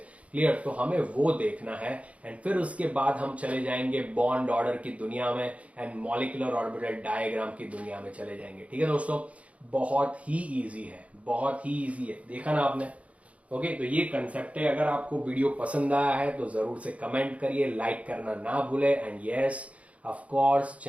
क्लियर? तो हमें वो देखना है। एंड फिर उसके बाद हम चले जाएंगे बॉन्ड ऑर्डर की दुनिया में एंड मॉलिक्यूलर ऑर्बिटल डायग्राम की दुनिया में चले जाएंगे। ठीक है दोस्तों, बहुत ही इजी है, बहुत ही इजी है। देखा ना आपने? ओके, तो ये कंसेप्ट है। अगर आपको वीडियो पसंद आया है तो जरूर से कमेंट करिए, लाइक करना ना भूले and yes of course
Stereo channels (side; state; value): left; late; 0.065 ms